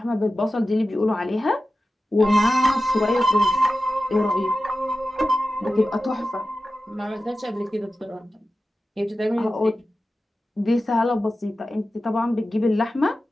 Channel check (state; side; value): normal; both; correlation 0.93